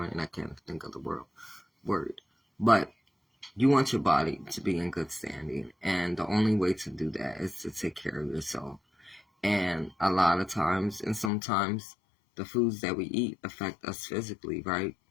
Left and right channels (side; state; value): right; drops out; at 11.3 s